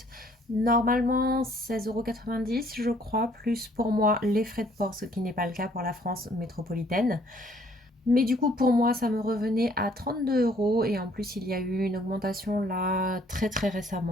normalement 16,90 € je crois, plus pour moi les frais de port, ce qui n'est pas le cas pour la France métropolitaine. Mais du coup, pour moi, ça me revenait à 32 € et en plus, il y a eu une augmentation là très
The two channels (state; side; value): normal; both; correlation 0.62